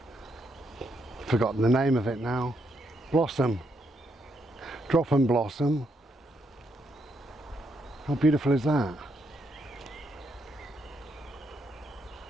forgotten the name of it now, blossom, drop and blossom. How beautiful is that?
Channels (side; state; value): both; normal; correlation 0.77